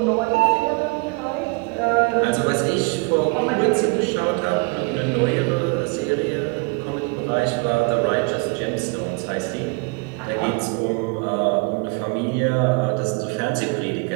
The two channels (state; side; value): quieter; left; 31.1 dB